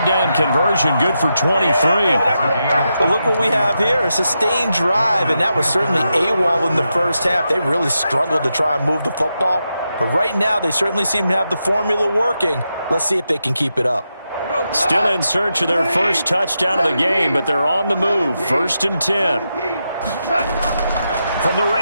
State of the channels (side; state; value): both; inverted; correlation -0.86